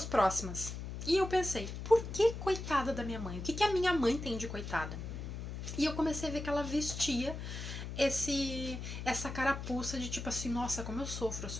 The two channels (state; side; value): noise; left; hum, 7 dB below the sound